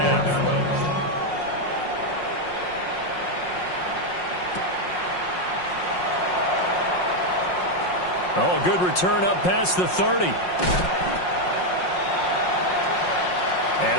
Oh, good return up past the 30.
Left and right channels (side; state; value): right; late; 5.5 ms